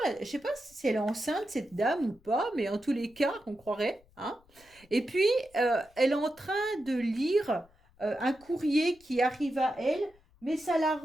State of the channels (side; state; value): left; noise; rumble, 29 dB below the sound